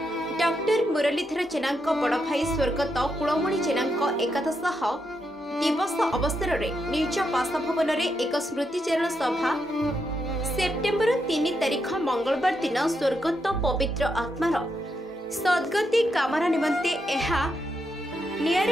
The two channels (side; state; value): both; normal; correlation 0.82